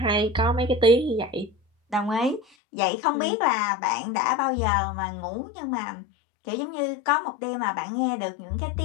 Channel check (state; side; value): drops out; right; at 2.4 s